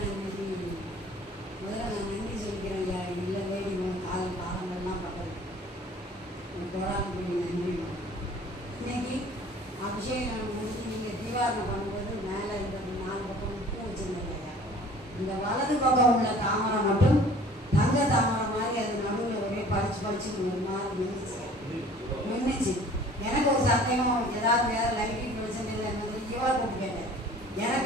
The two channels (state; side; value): normal; both; correlation 0.49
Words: இன்னைக்கு முதல்ல நான் நன்றி சொல்லிக்கிறேன் ஐயா. இல்லை வேடி காலம் காலங்கள்லாம் பட்டது போடாமல் நன்றி. இன்னைக்கு அபிஷேகம் முடிஞ்சு நீங்கள் தீவாரணம் பண்ணும்போது மேலே இந்த 4 பக்கம் பூ வச்சுருந்தேன் ஐயா. இந்த வலது பக்கம் உள்ள தாமரை மட்டும் தங்க தாமரை மாதிரி அது நடுவில் ஒரே படிச்சு ஒரு மாதிரி நின்றுச்சு. எனக்கு ஒரு சந்தேகம், ஏதாவது வேறு லைட்டிங் பிரச்சனை இல்லை இவரை கூப்பிட்டு கேட்டேன்.